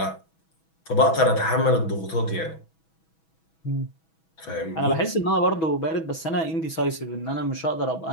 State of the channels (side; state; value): right; late; 6.2 ms